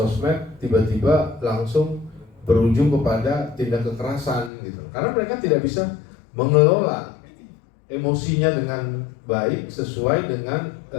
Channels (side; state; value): right; drops out; at 4.5 s